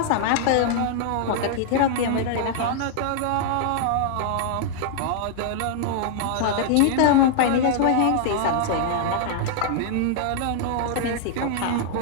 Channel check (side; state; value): both; different; correlation -0.01